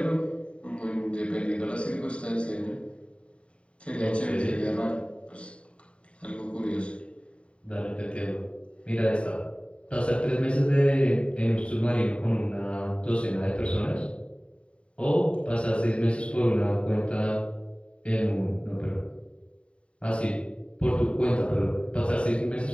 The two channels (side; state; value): right; late; 0.059 ms